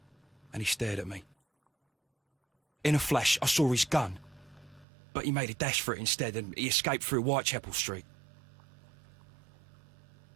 and he stared at me. In a flash, I saw his gun, but he made a dash for it instead, and he escaped through Whitechapel Street.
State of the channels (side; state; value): left; drops out; at 4.9 s